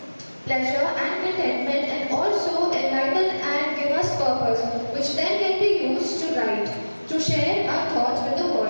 pleasure and contentment and also enlighten and give us purpose, which then can be used to write, to share our thoughts with the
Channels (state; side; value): inverted; both; correlation -1.00